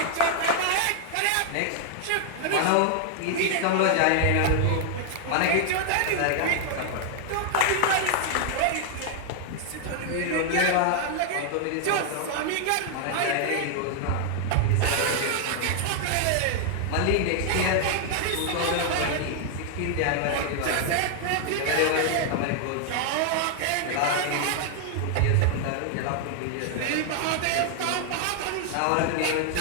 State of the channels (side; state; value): both; different; correlation 0.00